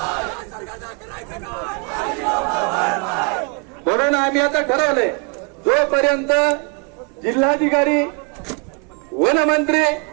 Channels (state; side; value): quieter; left; 33.9 dB